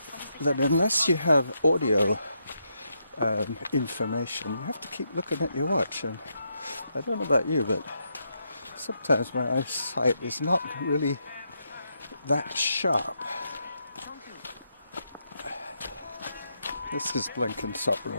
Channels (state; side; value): inverted; both; correlation -0.80